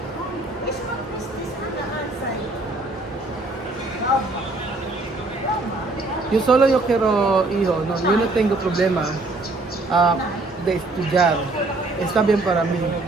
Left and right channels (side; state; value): left; quieter; 3.0 dB